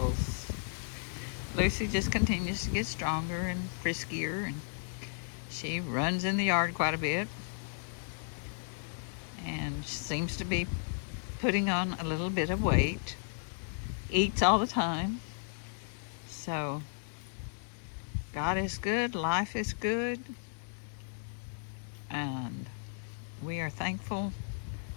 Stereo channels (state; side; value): silent; right; digital silence